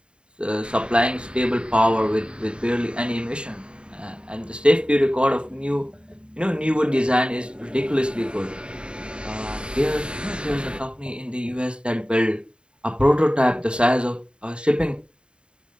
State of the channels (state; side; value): late; left; 0.051 ms